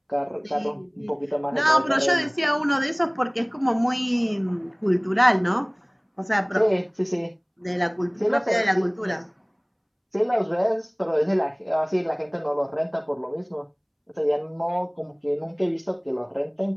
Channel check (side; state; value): both; identical; correlation 1.00